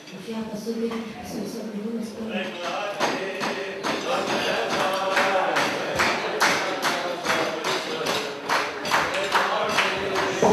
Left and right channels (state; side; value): identical; both; correlation 1.00